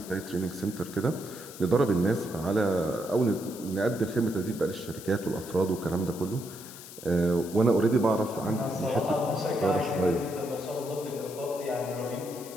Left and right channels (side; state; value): left; noise; hiss, 15 dB below the sound